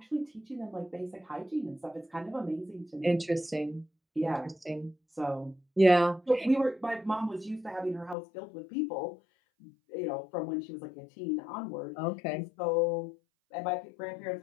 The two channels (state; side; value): drops out; right; at 8.2 s